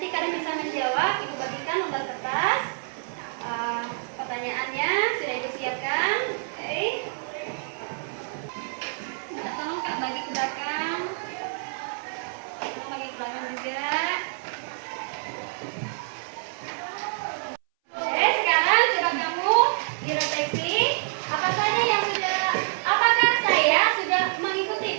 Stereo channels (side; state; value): left; silent; 60 dB below the other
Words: kalian bisa menjawab. Ibu bagikan lembar kertas. Pertanyaannya sudah Ibu siapkan. Oke. Minta tolong Kak bagi ke belakang. Tolong bagi ke belakang juga. Oke, sekarang coba kamu direfleksi. Apakah saya sudah mengikuti